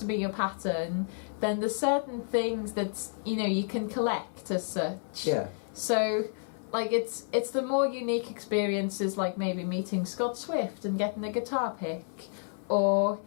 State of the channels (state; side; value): silent; right; 58 dB below the other